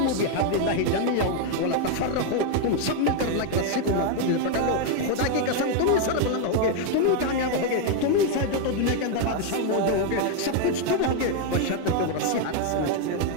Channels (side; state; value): both; different; correlation 0.01